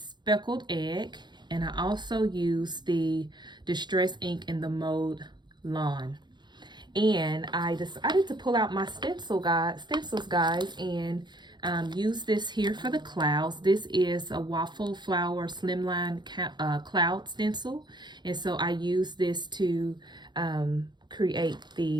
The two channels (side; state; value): left; late; 0.21 ms